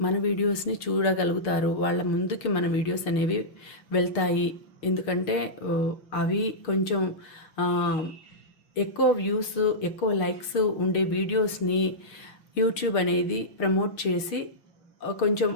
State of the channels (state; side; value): late; right; 6.5 ms